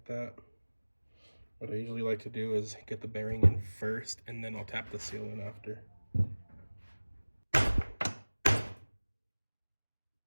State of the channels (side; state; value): both; inverted; correlation -1.00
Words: that. What I usually like to do is get the bearing in first, and then I'll tap the seal in after.